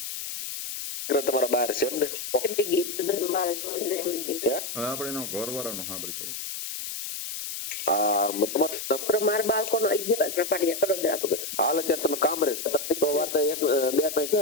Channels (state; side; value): noise; left; hiss, 6 dB below the sound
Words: તમારા બહાર છે એમ ને? હવે આપણે એનો ઘરવાળાનો સાંભળી થોડું. મારા બાળકોનો 11 પાડિયા કડોદરા. હાલ અત્યારે તમે કામ રહે તો વાત